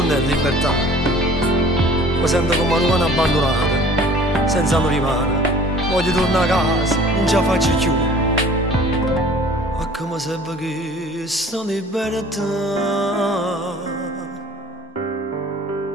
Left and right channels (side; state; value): both; normal; correlation 0.49